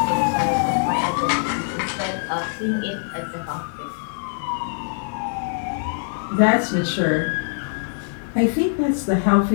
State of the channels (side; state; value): right; silent; digital silence